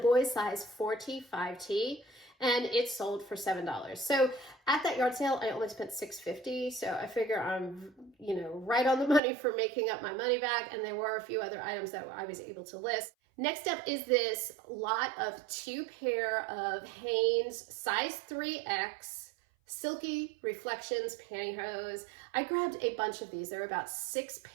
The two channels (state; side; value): drops out; left; at 9.2 s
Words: size 4T, 5T, and it sold for $7. So at that yard sale, I only spent $6.50. So I figure I'm, right on the money for making up my money back. And there were a few other items that I was able to list. Next up is this lot of 2 pair of Hanes size 3X Silky Reflections pantyhose. I grabbed a bunch of these. There were about 6